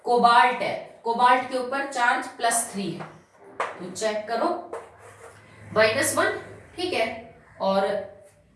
कोबाल्ट है, कोबाल्ट के ऊपर चार्ज +3 है, तो चेक करो -1, ठीक है। और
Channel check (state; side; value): identical; both; correlation 1.00